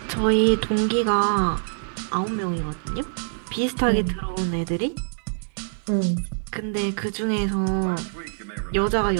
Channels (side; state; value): left; silent; 62 dB below the other